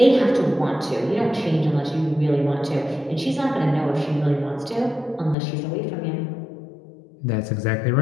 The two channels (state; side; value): drops out; right; at 5.4 s